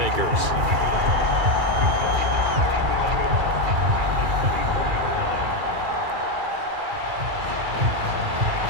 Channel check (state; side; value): late; left; 2.3 ms